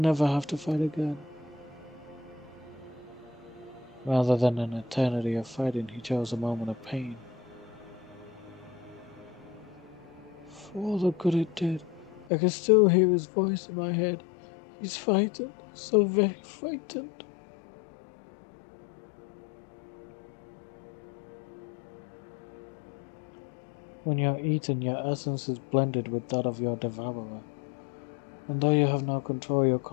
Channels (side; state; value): right; drops out; at 12.2 s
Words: have to fight again. Rather than an eternity of fighting, he chose a moment of pain. For all the good it did, I can still hear his voice in my head. He's frightened, so very frightened. When you're eaten, your essence is blended with that of your devourer. And though you have no control, your